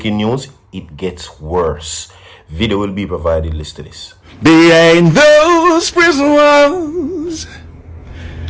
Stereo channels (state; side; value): identical; both; correlation 1.00